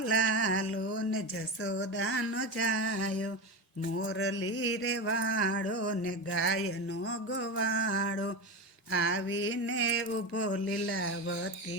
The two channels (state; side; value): normal; both; correlation 0.20